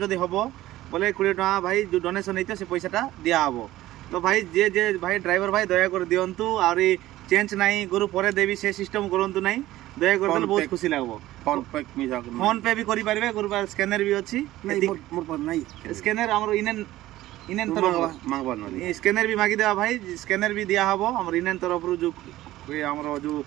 हबो बोले 20 टका भाई जो डोनेशन हेते से पैसाटा दिया हबो। तो भाई जे भाई ड्राइवर भाई दया कर दियंतु और चेंज नहीं गुरु परे देवी से सिस्टम करंतु नहीं दया कर देले बहुत खुशी लागबो। फोन पे भी करि पारबे गुरु पर स्कैनर भी अछि नहीं मोर पर नहीं स्कैनर हमरो इनेन इनेन तरफ मांगबा नहीं स्कैनर भी मागी देबा भाई स्कैनर भी दिया हबो हमर इनेन तरफ रु जो हमरो जो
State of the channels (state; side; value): quieter; left; 15.7 dB